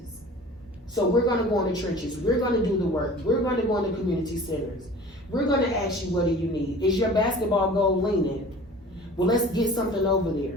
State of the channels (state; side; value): normal; both; correlation 0.43